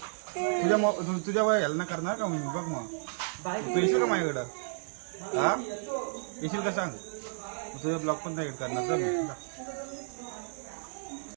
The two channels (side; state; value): left; silent; 57 dB below the other